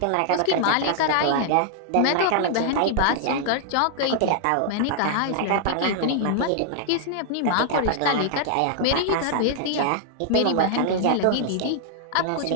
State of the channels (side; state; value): both; different; correlation -0.01